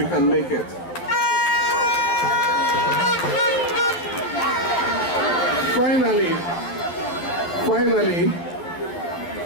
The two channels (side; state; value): right; late; 12 ms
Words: can make it. Finally,